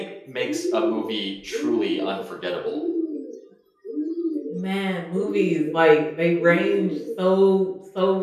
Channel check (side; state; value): both; identical; correlation 1.00